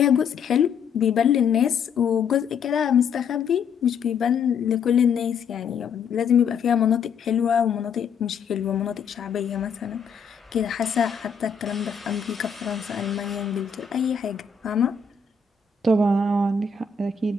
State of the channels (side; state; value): right; quieter; 6.1 dB